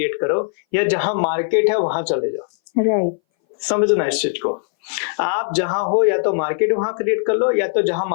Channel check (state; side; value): silent; right; 61 dB below the other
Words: करो, या जहां मार्केट है वहां चले जाओ। राइट, समझना इस चीज को, आप जहां हो या तो मार्केट वहां क्रिएट कर लो या तो जहां